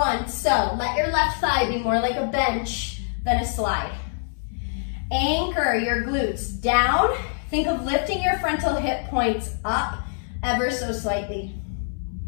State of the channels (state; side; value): silent; right; 62 dB below the other